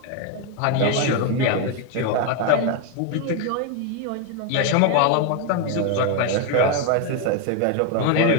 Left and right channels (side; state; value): both; different; correlation 0.01